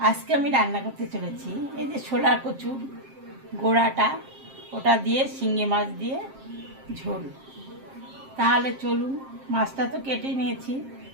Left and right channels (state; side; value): late; left; 7.5 ms